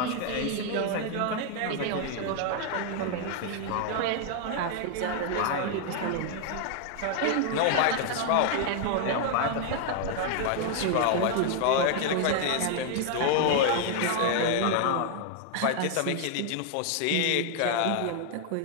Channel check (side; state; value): both; different; correlation 0.00